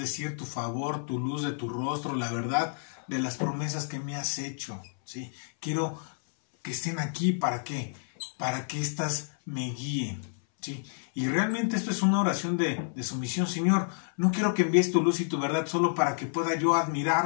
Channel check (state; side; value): silent; right; 58 dB below the other